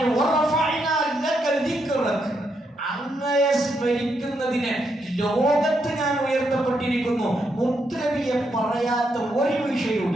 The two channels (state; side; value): normal; both; correlation 0.80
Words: അങ്ങയെ സ്മരിക്കുന്നതിന് ലോകത്ത് ഞാൻ ഉയർത്തപ്പെട്ടിരിക്കുന്നു. മുത്തുനബിയെ പറയാത്ത ഒരു